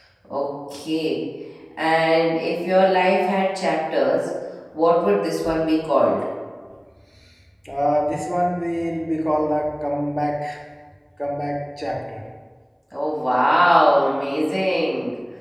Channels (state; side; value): identical; both; correlation 1.00